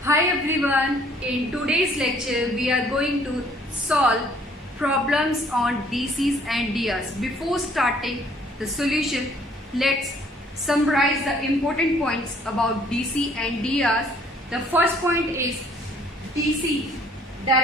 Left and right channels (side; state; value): both; normal; correlation 0.60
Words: Hi everyone, in today's lecture we are going to solve problems on DCs and DRs. Before starting the solution, let's summarize the important points about DC and DRs. The first point is DC,